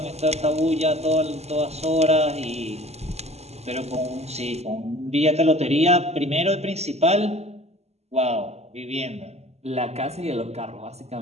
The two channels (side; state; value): left; late; 0.31 ms